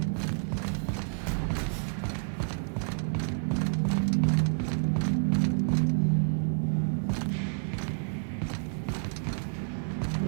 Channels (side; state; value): left; silent; digital silence